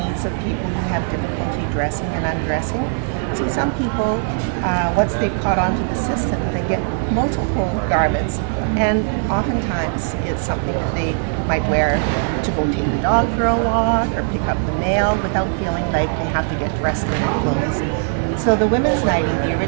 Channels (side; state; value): left; silent; digital silence